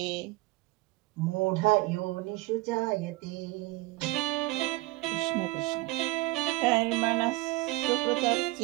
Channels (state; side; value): quieter; left; 21.7 dB